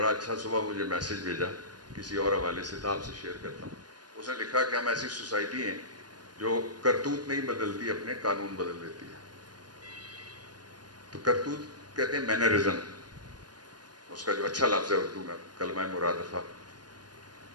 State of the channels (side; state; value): left; late; 0.69 ms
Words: اچھا صبح مجھے میسج بھیجا کسی اور حوالے سے, تو آپ سے شیئر کرتا ہوں. اس نے لکھا کہ ہم ایسی سوسائٹی ہیں جو کرتوت نہیں بدلتی, اپنے قانون بدل دیتی ہے. تو کرتوت کہتے ہیں مینرزم, اس کا جو اچھا لفظ ہے اردو میں کلمہ مرادفہ,